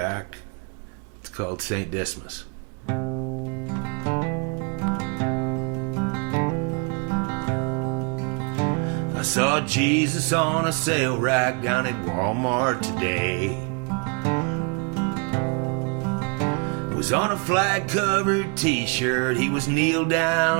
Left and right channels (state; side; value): quieter; left; 34.5 dB